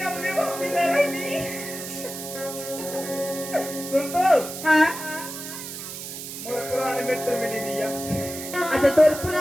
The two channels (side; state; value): right; noise; hiss, 9 dB below the sound